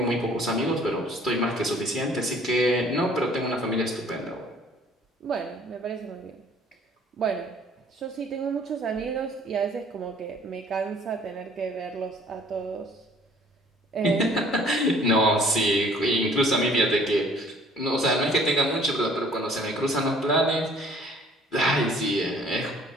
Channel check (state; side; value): normal; both; correlation 0.56